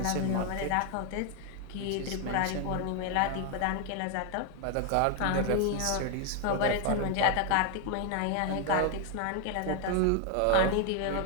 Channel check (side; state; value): both; different; correlation 0.00